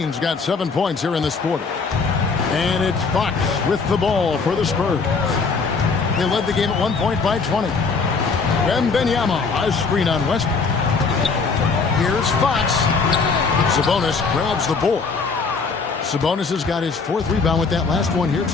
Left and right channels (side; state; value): right; quieter; 4.7 dB